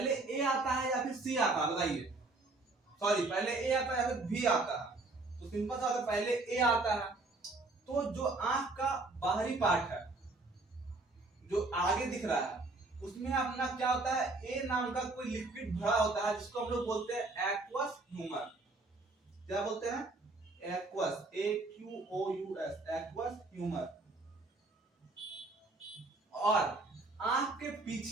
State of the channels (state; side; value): quieter; left; 3.2 dB